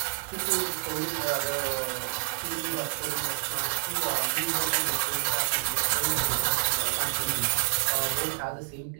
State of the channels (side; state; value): left; silent; digital silence